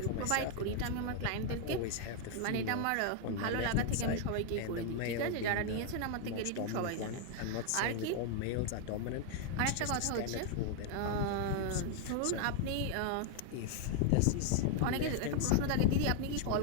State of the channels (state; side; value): different; both; correlation 0.00